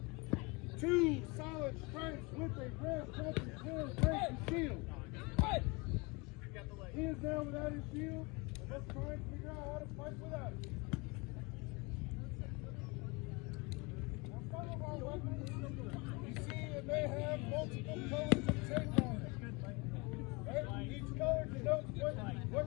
2 solid strikes with a red jumping clear break the shield. He is now without his shield, and let's try and figure out how to fight without it. Now, some of our weapons, you see, it may have multiple colors of tape on it. Right? Each color denotes what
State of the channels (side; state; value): right; quieter; 27.4 dB